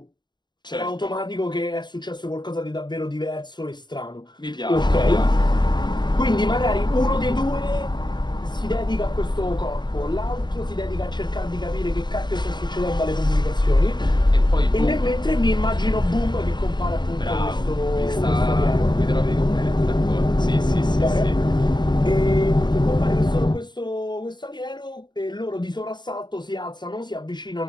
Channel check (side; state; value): right; late; 0.21 ms